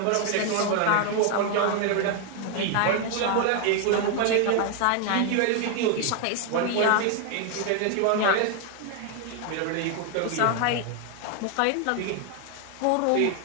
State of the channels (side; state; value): both; different; correlation 0.01